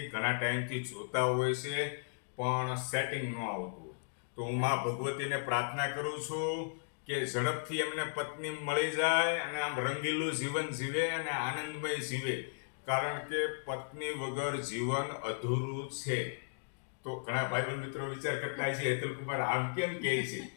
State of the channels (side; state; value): right; silent; digital silence